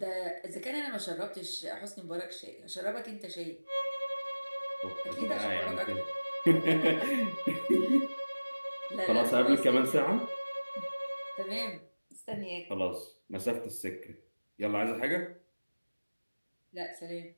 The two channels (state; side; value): inverted; both; correlation -1.00